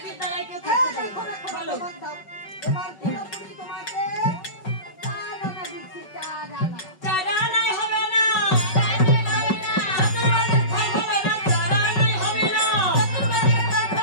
বিদ্যালয়ে কেউ থাকতে পারে না। বলো। এবার পুরোপুরি তোমাকে 4 আনা দিচ্ছি, 4 আনা। চার আনায় হবে না। চতুর্বারের ফল হবে না, চার আনায় হবে না।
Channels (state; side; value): late; right; 5.3 ms